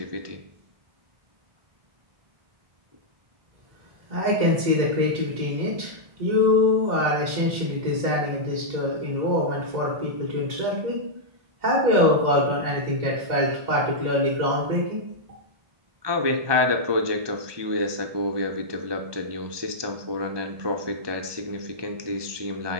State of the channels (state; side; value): late; left; 1.2 ms